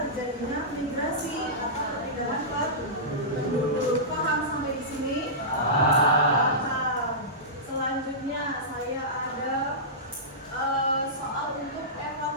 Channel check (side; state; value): both; normal; correlation -0.17